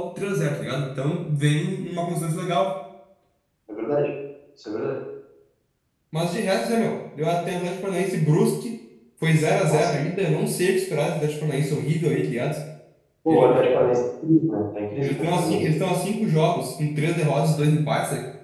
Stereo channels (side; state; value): both; identical; correlation 1.00